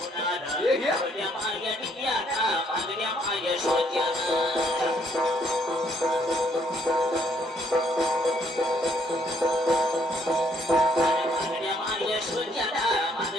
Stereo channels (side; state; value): both; normal; correlation 0.68